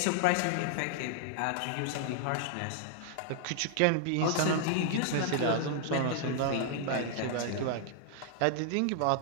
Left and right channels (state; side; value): different; both; correlation 0.00